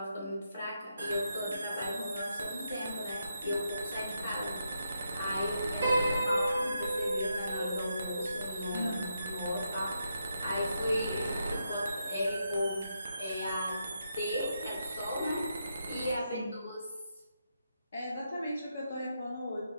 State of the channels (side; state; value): both; inverted; correlation -0.82